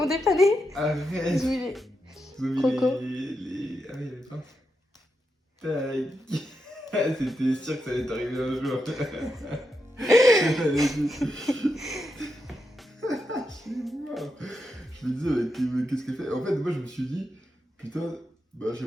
dépanné. Arrête. Ils ont mis les... Ils ont mis Croco. les... Ah oui, les phares. Tac. C'était sûr que ça allait t'arriver un jour. Je me disais, mais qu'est-ce qu'elle fait? En fait, moi, je me suis dit, putain, bah, j'ai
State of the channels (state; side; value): normal; both; correlation 0.85